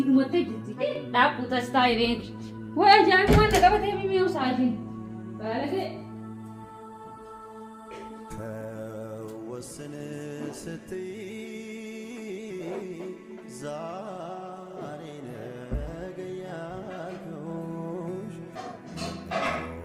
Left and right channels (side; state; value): both; identical; correlation 1.00